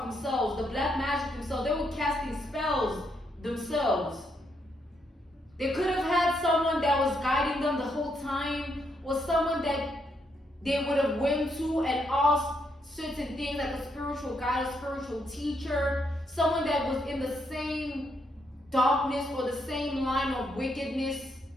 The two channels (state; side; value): normal; both; correlation 0.77